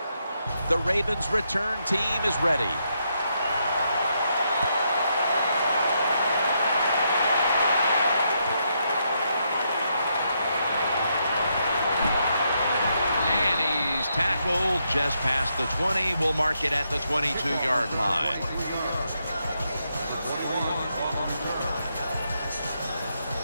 The Ravens return team is ready. Tackled just past the 20. We'll mark it at the 22-yard line.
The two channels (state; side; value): inverted; both; correlation -0.79